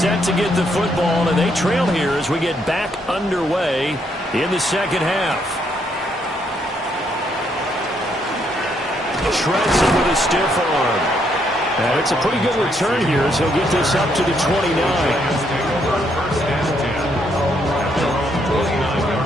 to get the football, and they trail here as we get back underway in the second half. Shreds him with a stiff arm. And it's a pretty good return here as he'll get this up to the 29.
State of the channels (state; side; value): normal; both; correlation 0.73